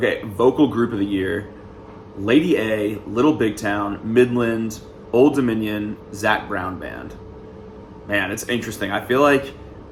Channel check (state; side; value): identical; both; correlation 1.00